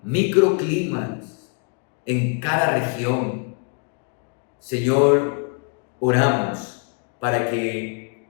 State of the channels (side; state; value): right; quieter; 38.6 dB